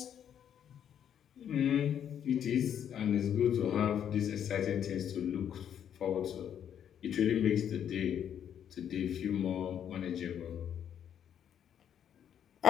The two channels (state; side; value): quieter; right; 9.2 dB